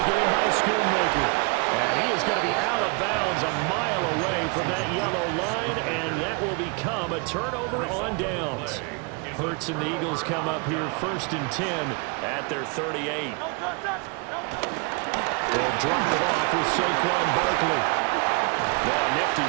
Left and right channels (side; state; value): left; quieter; 32.1 dB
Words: in by Schoonmaker. And he is going to be out of bounds a mile away from that yellow line, and that will become a turnover on downs. Hurts and the Eagles come up here 1st and 10 at their 38. They'll drop it off with Saquon Barkley. Oh, nifty